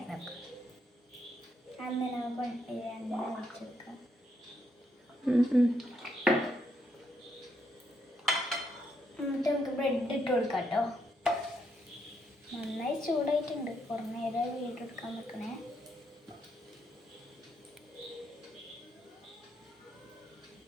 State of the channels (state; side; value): normal; both; correlation 0.77